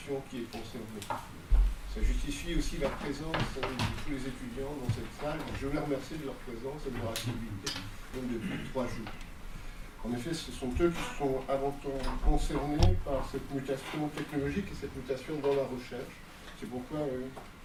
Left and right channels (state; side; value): identical; both; correlation 1.00